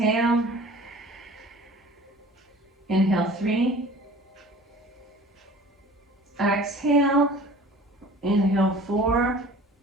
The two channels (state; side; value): normal; both; correlation 0.45